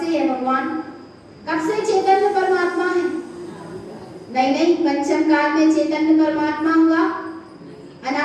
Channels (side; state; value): both; identical; correlation 1.00